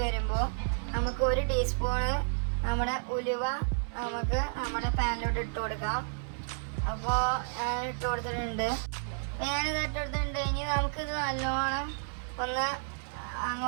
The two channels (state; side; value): silent; left; 57 dB below the other